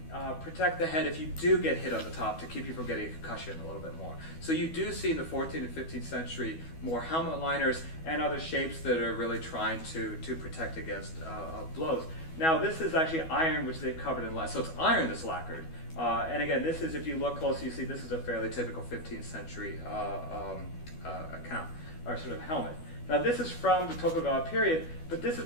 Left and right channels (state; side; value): late; right; 12 ms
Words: protect the head if you do get hit on the top, to keep you from getting a concussion a little bit more. So you do see in the 14th and 15th century more helmet liners and other shapes that are really trying to protect against blows. Now this is actually iron, which they've covered in lead. So it's iron that's lacquered. And again, this is, if you look closely, you see this is a fairly typical 15th century account, or sort of helmet. Now this is from the Tokugawa period, but this